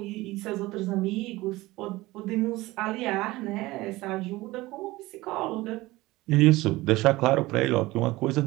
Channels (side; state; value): left; quieter; 19.4 dB